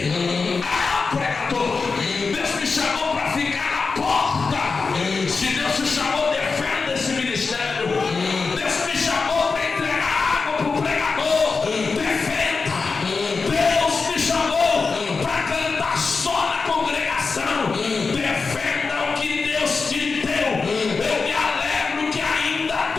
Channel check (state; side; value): quieter; right; 4.5 dB